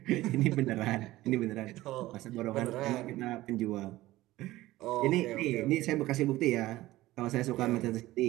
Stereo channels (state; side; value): quieter; left; 17.0 dB